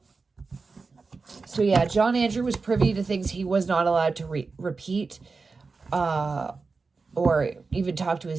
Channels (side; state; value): left; quieter; 4.3 dB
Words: So yeah, John Andrew was privy to things he was not allowed to repeat, or even talk to